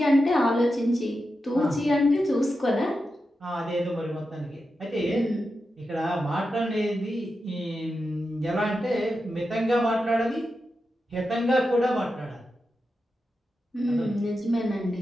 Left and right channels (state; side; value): normal; both; correlation 0.89